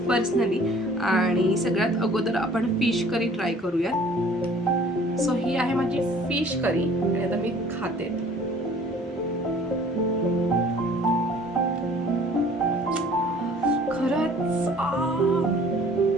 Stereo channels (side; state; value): both; normal; correlation 0.52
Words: पर्सनली. आणि सगळ्यात अगोदर आपण फिश करी ट्राय करूयात. सो ही आहे माझी फिश करी आणि आता मी खाते. खरंच